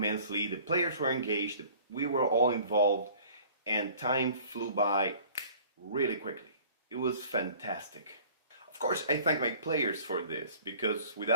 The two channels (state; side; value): inverted; both; correlation -0.50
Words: The players were engaged, we were all involved, and time flew by really quickly. It was fantastic. Of course, I thank my players for this, because